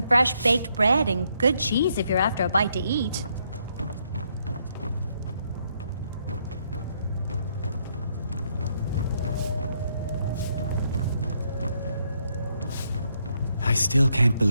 fresh baked bread and good cheese if you're after a bite to eat. I still can't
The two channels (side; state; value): both; inverted; correlation -0.74